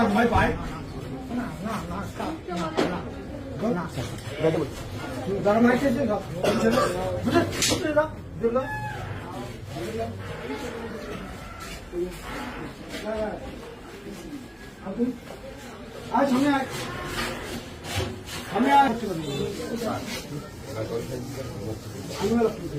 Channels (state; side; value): identical; both; correlation 1.00